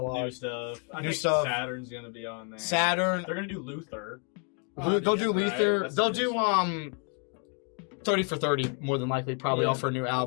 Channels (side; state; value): right; quieter; 39.3 dB